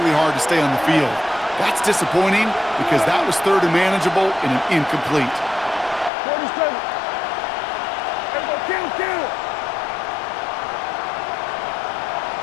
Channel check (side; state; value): right; drops out; at 6.1 s